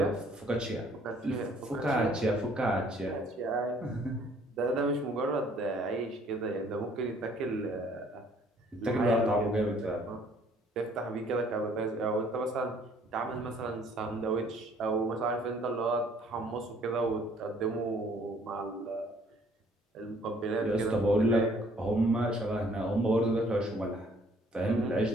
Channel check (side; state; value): both; normal; correlation 0.60